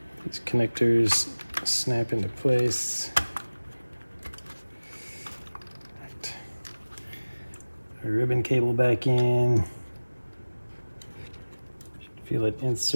These connectors snap into place. Right. Our ribbon cable back in. Feel it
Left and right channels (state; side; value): inverted; both; correlation -1.00